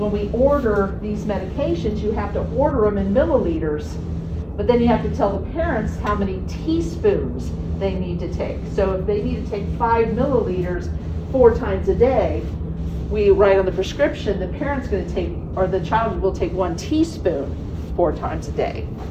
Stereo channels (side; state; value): both; identical; correlation 1.00